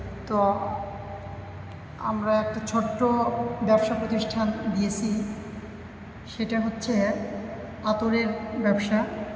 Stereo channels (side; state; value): both; identical; correlation 1.00